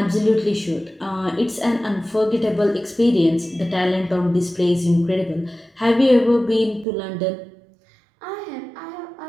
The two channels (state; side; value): drops out; left; at 6.9 s